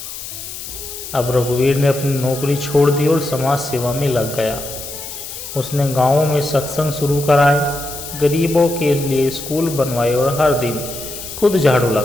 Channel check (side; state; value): left; noise; hiss, 10 dB below the sound